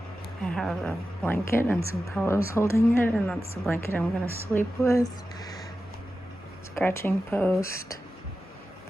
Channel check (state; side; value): normal; both; correlation 0.93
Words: I have a blanket and some pillows holding it, and that's the blanket I'm gonna sleep with. Scratching post,